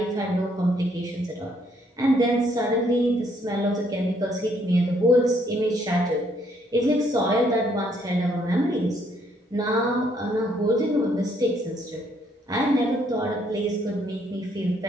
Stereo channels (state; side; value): normal; both; correlation 0.69